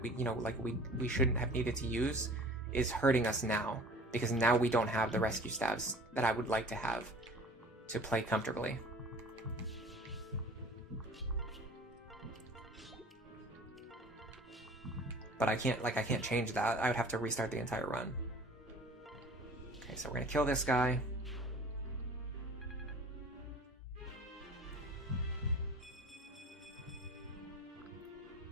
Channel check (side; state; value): both; normal; correlation 0.46